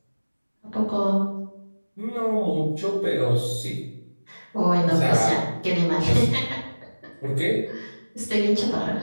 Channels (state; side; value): inverted; both; correlation -1.00